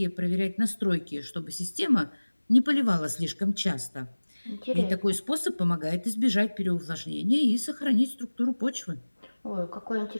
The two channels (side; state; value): both; inverted; correlation -1.00